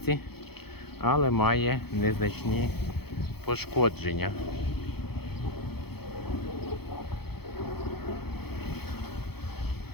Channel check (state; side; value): late; right; 0.96 ms